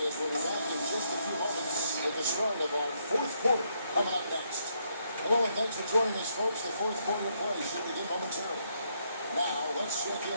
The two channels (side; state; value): both; inverted; correlation -0.75